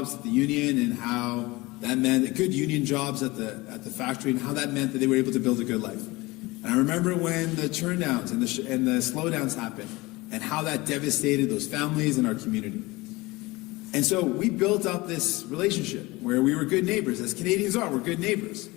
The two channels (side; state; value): right; quieter; 21.8 dB